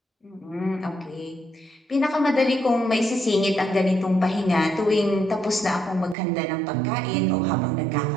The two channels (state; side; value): drops out; left; at 6.2 s